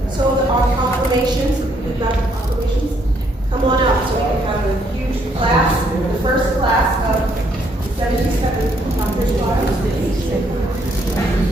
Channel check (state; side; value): normal; both; correlation 0.70